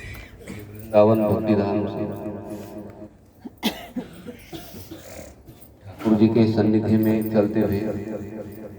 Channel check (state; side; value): identical; both; correlation 1.00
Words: भक्तिधाम से ठाकुर जी के सन्निधि में चलते हुए